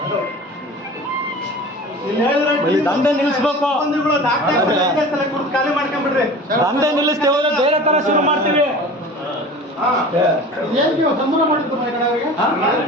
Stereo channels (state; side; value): normal; both; correlation 0.38